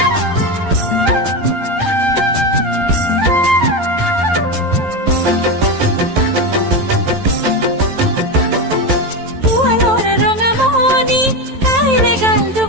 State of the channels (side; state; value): left; late; 11 ms